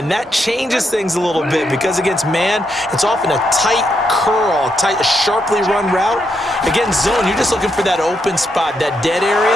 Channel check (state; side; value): normal; both; correlation 0.80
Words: that changes things a little bit because against man, it's often a tight curl, a sharply run route. Against zone, you're just looking for that open spot, that dead